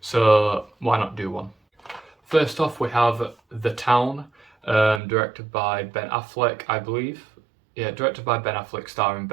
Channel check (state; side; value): drops out; left; at 5.0 s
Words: so why not do one? First off, we have The Town, directed by Ben Affleck, I believe. Yeah, directed by Ben Affleck, starring